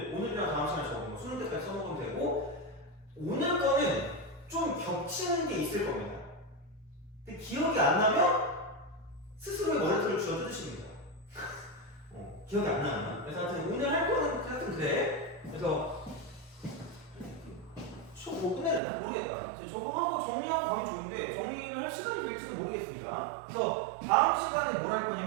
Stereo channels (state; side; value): drops out; left; at 18.8 s